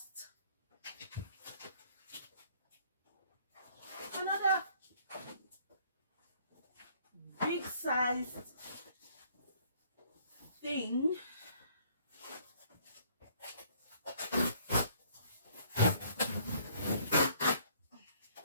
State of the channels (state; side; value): inverted; both; correlation -0.61